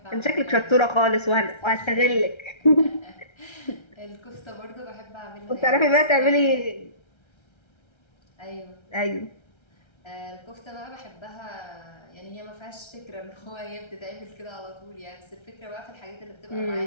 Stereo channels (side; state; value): right; late; 1.3 ms